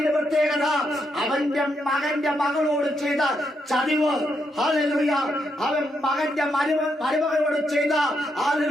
പ്രത്യേകത അവന്റെ മകന്റെ മകളോട് ചെയ്ത ചതിവ്. ഹല്ലേലൂയ. അവൻ മകന്റെ മരുമകളോട് ചെയ്ത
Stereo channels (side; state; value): both; normal; correlation 0.79